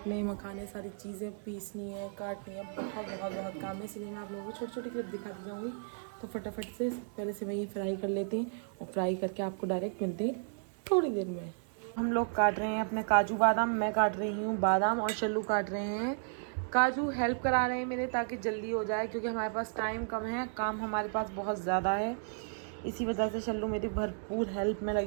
मखाने, सारी चीज़ें पीसनी है, काटनी है, बहुत काम है, इसलिए मैं आप लोगों को छोटी छोटी क्लिप दिखाती जाऊँगी। तो फटाफट से पहले से वही फ्राई कर लेते हैं और फ्राई करके आपको डायरेक्ट मिलते हैं थोड़ी देर में। हम लोग काट रहे हैं अपने काजू बादाम, मैं काट रही हूँ बादाम और शल्लू काट रहे हैं काजू। हेल्प करा रहे हैं मेरे ताकि जल्दी हो जाए क्योंकि हमारे पास टाइम कम है, काम हमारे पास बहुत ज़्यादा है, इसी वजह से शल्लू मेरी भरपूर हेल्प में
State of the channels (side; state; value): left; silent; digital silence